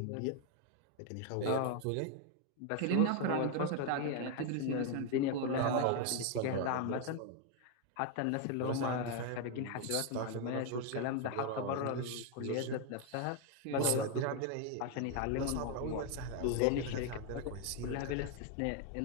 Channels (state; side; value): different; both; correlation 0.01